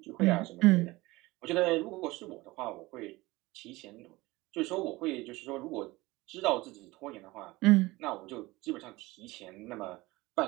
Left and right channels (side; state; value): left; quieter; 20.6 dB